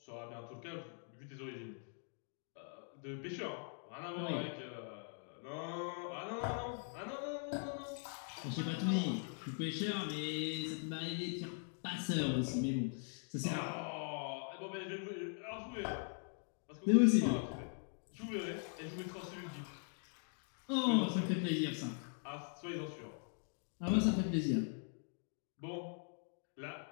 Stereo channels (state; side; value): silent; right; 50 dB below the other